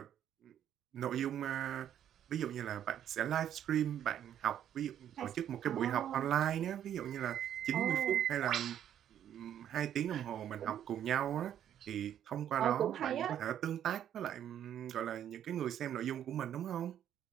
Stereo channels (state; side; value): quieter; left; 10.2 dB